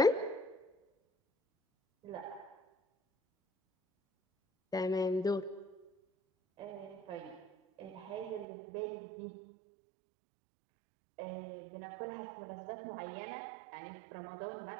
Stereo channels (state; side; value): drops out; left; at 8.5 s